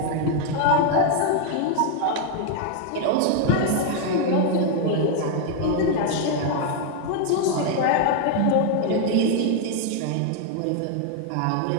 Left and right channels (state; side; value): different; both; correlation 0.00